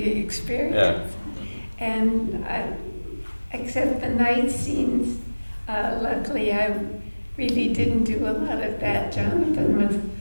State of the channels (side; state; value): both; inverted; correlation -1.00